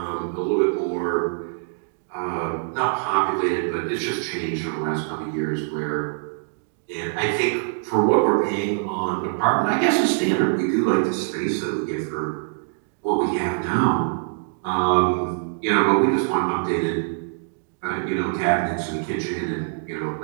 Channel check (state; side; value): silent; left; digital silence